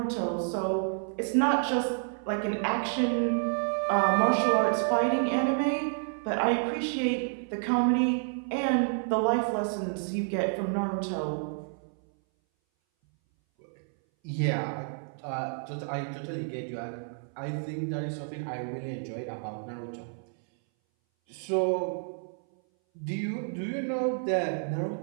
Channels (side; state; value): left; silent; 58 dB below the other